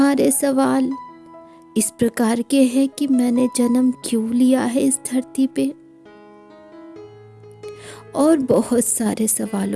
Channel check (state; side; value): identical; both; correlation 1.00